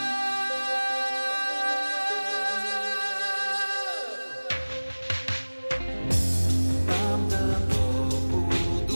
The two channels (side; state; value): both; inverted; correlation -1.00